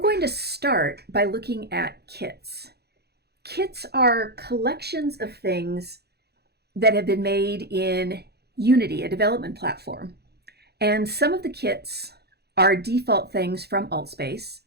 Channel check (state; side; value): late; left; 0.47 ms